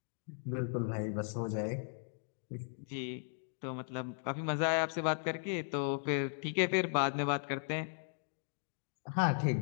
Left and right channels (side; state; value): right; silent; digital silence